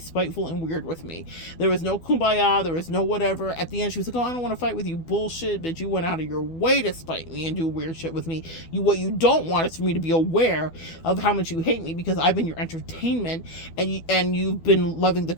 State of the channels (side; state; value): right; late; 12 ms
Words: and weird with me. There was no kumbaya, there was no whatever. At the end, she was like, oh, I don't want to fight with you. Bullshit, bitch. You went out of your way to spite me and do weird shit with me. What you don't want is for me to be aware of how much you hate me, because I've been your entertainment, and you've been loving the